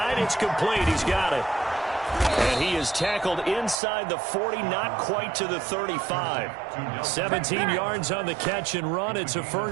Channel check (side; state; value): left; drops out; at 3.8 s